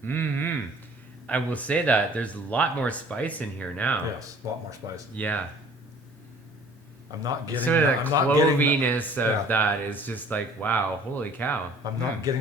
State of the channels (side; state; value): both; normal; correlation 0.51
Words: Mm-hmm. I will say that there's a lot more spice in here now. Yes, a lot more spice. Yeah. I'm not getting Sort of that. the I'm not getting cloviness of that is just like, wow, holy cow. I'm not getting